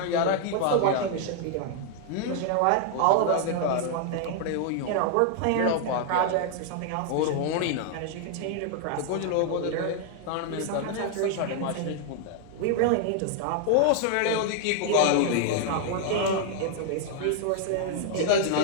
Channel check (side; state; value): both; different; correlation 0.00